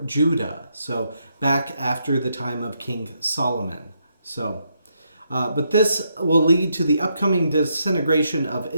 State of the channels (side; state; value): both; inverted; correlation -0.78